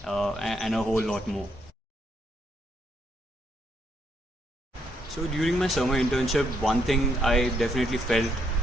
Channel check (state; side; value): normal; both; correlation 0.75